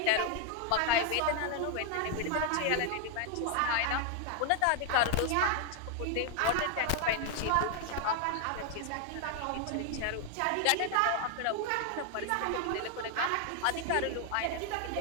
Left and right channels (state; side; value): different; both; correlation 0.00